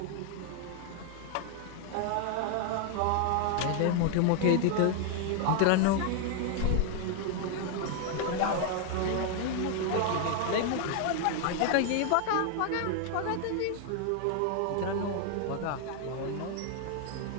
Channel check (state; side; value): different; both; correlation 0.00